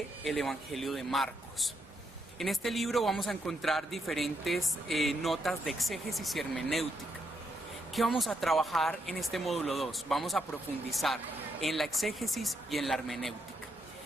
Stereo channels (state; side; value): normal; both; correlation 0.79